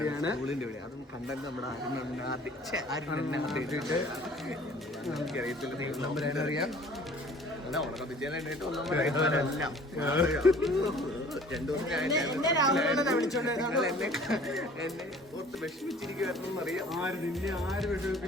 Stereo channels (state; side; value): normal; both; correlation 0.50